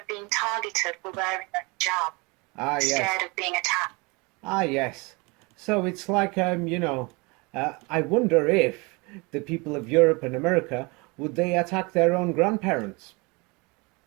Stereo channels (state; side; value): quieter; left; 27.6 dB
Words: being targeted for wearing a hijab. Yes. Scared of being attacked. Yes. So it's like, I wonder if the people of Europe and America, would they attack their own grandparents?